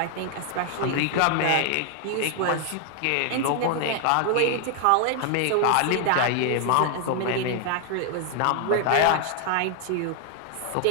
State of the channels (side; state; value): both; different; correlation 0.00